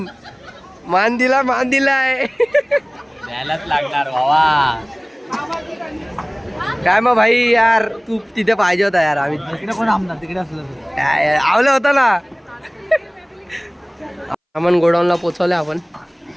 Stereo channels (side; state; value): both; identical; correlation 1.00